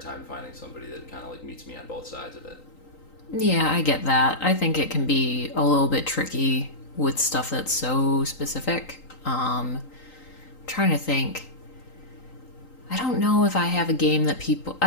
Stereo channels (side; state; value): right; late; 3.8 ms